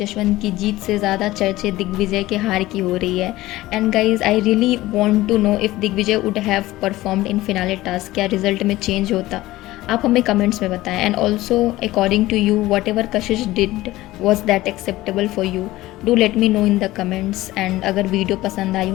की जीत से ज़्यादा चर्चे दिग्विजय के हार की हो रही है। And guys, I really want to know if Digvijay would have performed in finale task, क्या रिजल्ट में चेंज होता, आप हमें कमेंट्स में बताएं। And also according to you, whatever Kashish did was that acceptable for you, do let me know in the comments. And अगर video पसंद आई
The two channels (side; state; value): right; quieter; 17.3 dB